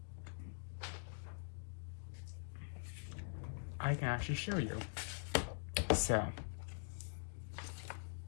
I can actually show you. So,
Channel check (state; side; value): silent; right; digital silence